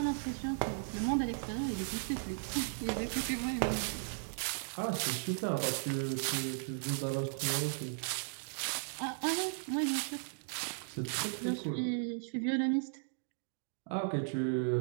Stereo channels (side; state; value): left; silent; digital silence